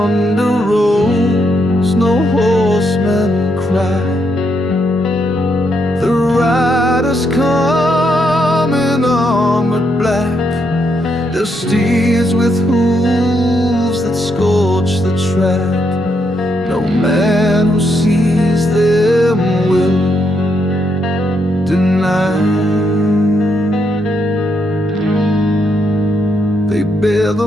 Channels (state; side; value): normal; both; correlation 0.78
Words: rolls, no horsemen cry. The riders come in armored black, their steeds with hooves that scorch the track. No man who sees them will deny. They bear